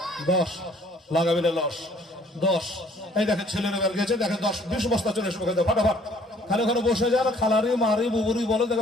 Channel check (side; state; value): both; normal; correlation 0.59